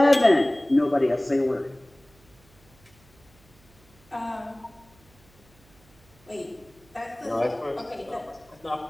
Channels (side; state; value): right; noise; hum, 29 dB below the sound